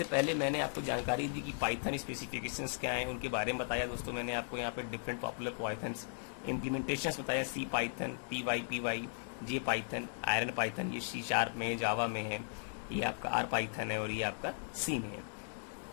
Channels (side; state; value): right; silent; digital silence